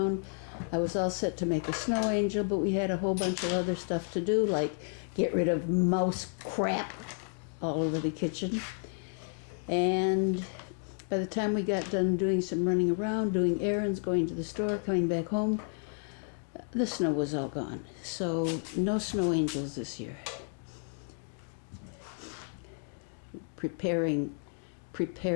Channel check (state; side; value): silent; right; 57 dB below the other